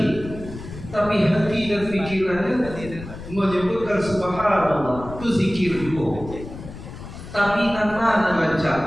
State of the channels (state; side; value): noise; left; rumble, 13 dB below the sound